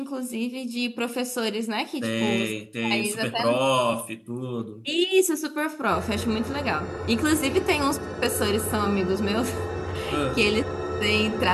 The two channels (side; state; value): both; identical; correlation 1.00